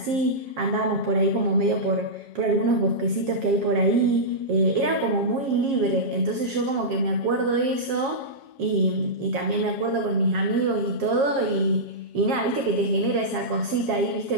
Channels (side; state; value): left; late; 7.3 ms